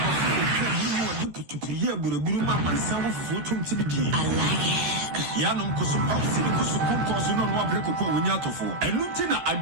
Yanum Kusupausi, Kusupos, no Wabreko, Winyatofo, and Lieutenant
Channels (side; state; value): left; late; 13 ms